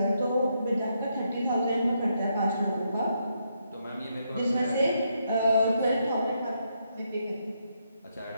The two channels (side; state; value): both; inverted; correlation -0.78